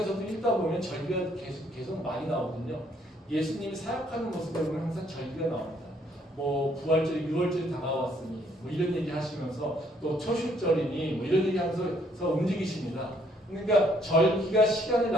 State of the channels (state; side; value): normal; both; correlation 0.66